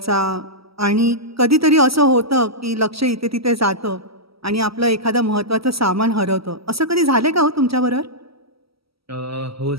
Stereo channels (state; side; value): late; left; 0.76 ms